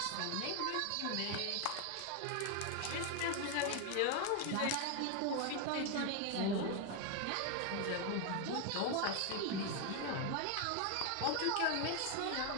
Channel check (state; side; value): different; both; correlation 0.01